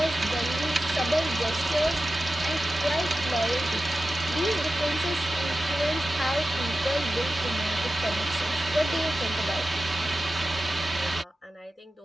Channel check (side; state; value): both; normal; correlation 0.94